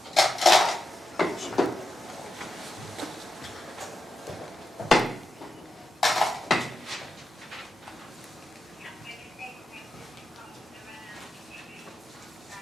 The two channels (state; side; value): normal; both; correlation 0.88